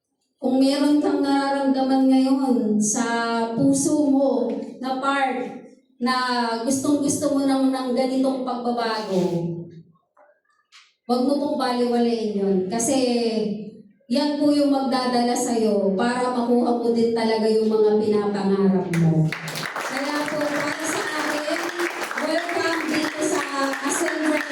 kung meron kang nararamdaman ngayon sa puso mo na part na gustong-gusto mo ng ganitong pagbabago, huwag mo pong baliwalain yun. Kasi yan po yung magdadala sa'yo para makuha mo din talaga yung mga pinapangarap mo. Kaya po, para sa akin, welcome dito sa Ascendra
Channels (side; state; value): both; identical; correlation 1.00